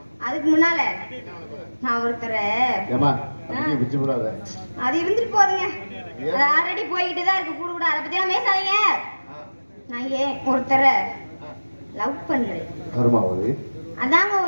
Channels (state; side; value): inverted; both; correlation -1.00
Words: அதுக்கு முன்னால நான் ஒருத்தரை அது இருந்துட்டு போதுங்க, அது ஆல்ரெடி போய்கிட்டு தான் இருக்கு. கூட கூட அதை பத்தி எல்லாம் பேசாதீங்க. நான் ஏன் ஒருத்தரை லவ் பண்றேன். அதாங்க